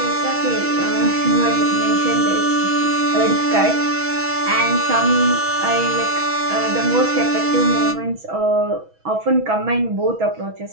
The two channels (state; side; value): late; left; 6.2 ms